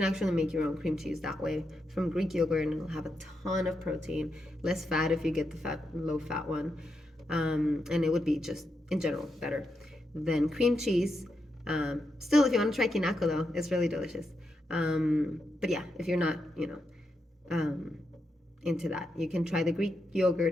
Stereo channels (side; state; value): both; normal; correlation 0.84